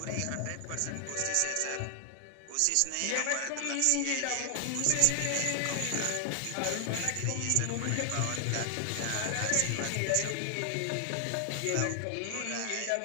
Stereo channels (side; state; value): both; different; correlation 0.00